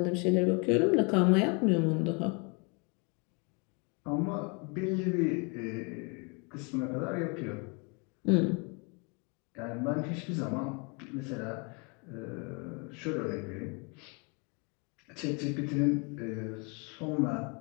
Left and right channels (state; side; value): quieter; right; 32.5 dB